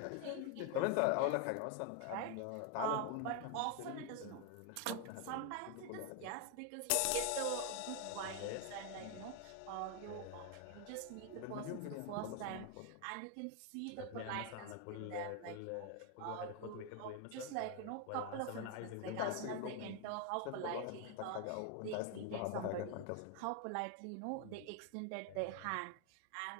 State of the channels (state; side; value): different; both; correlation 0.01